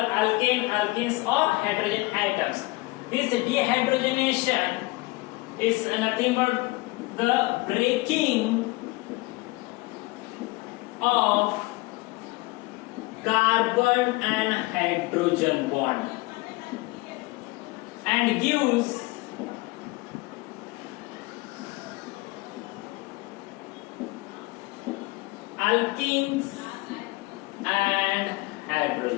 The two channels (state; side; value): quieter; right; 22.8 dB